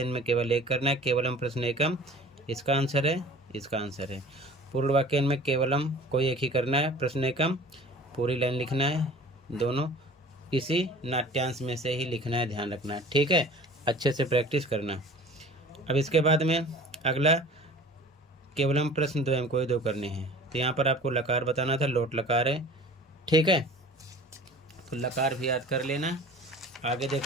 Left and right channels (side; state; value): both; normal; correlation 0.44